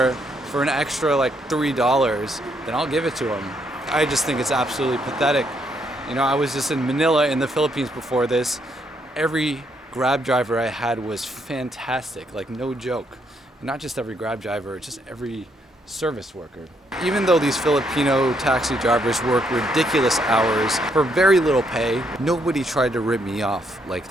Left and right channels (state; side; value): normal; both; correlation 0.74